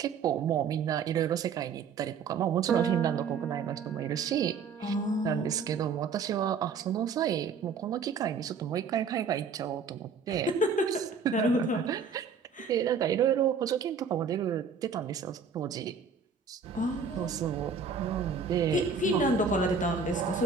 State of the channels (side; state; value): left; quieter; 5.6 dB